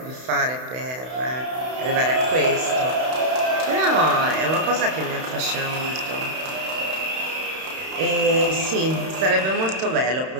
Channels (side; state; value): left; late; 31 ms